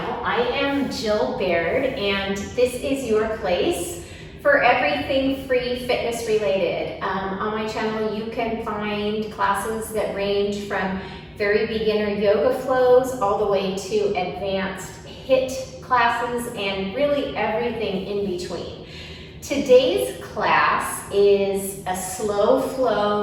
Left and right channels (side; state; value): both; identical; correlation 1.00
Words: I am Jill Baird and this is your place for everything free fitness related. On my channel you can find classes that range from very beginner yoga flows all the way to advanced HIIT classes and really everything in between. Today's class is a slow